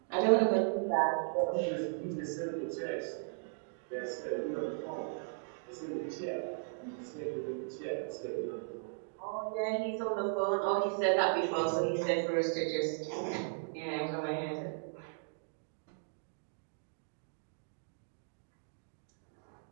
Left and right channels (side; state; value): left; silent; digital silence